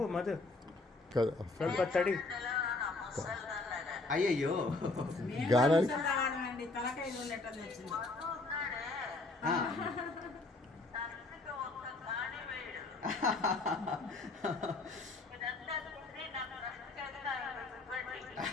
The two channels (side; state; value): right; quieter; 3.3 dB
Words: మధు, కదా ಸ್ವಲ್ಪ తడి. అయ్యయ్యో గానానికి